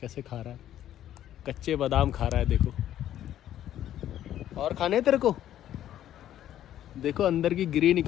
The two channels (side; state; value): right; quieter; 11.7 dB